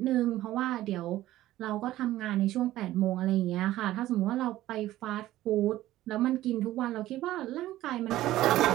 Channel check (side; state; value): left; quieter; 15.0 dB